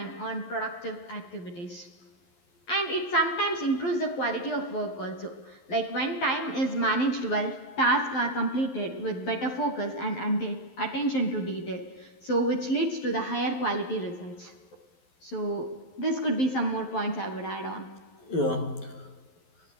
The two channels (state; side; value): late; right; 11 ms